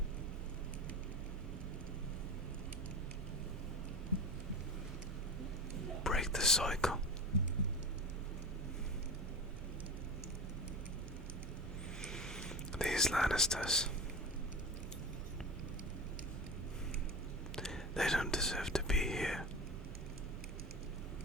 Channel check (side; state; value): both; normal; correlation 0.27